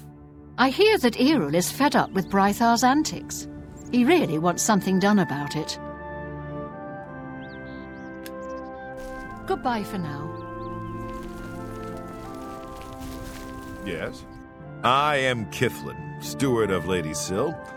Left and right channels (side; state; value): both; identical; correlation 1.00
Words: I hear that Errol is fed up with Brythar's antics. He really wants something done about it. Goodbye for now. Yes? I am Kithlin, steward of Lady Syl.